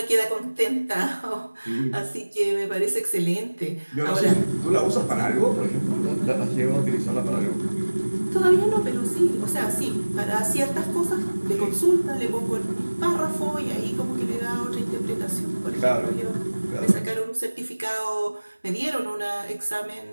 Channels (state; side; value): inverted; both; correlation -1.00